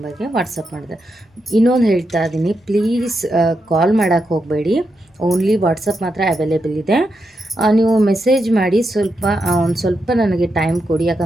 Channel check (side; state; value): both; normal; correlation 0.84